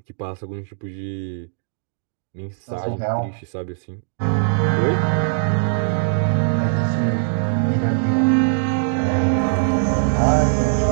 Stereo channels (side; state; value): left; silent; digital silence